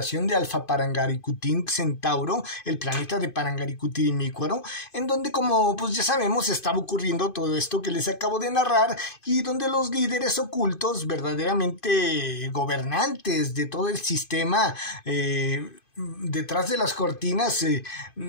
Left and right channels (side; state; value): right; late; 2.5 ms